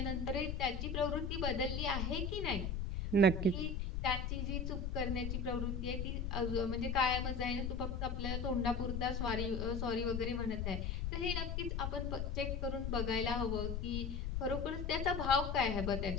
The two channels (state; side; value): noise; left; rumble, 2 dB below the sound